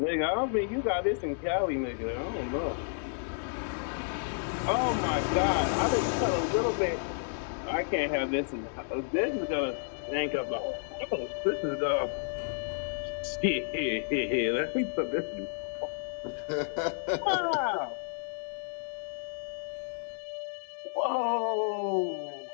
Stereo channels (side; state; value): right; silent; digital silence